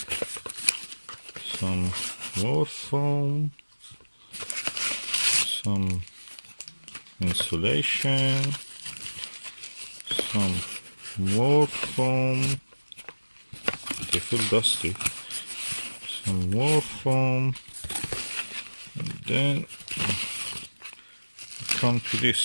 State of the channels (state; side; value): inverted; both; correlation -1.00